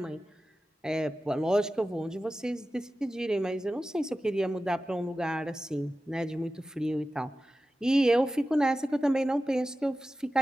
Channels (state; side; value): normal; both; correlation 0.94